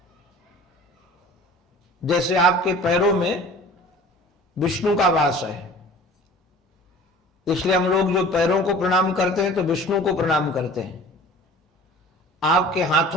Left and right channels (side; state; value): both; normal; correlation 0.45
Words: जैसे आपके पैरों में विष्णु का वास है, इसलिए हम लोग जो पैरों को प्रणाम करते हैं तो विष्णु को प्रणाम करते हैं। आपके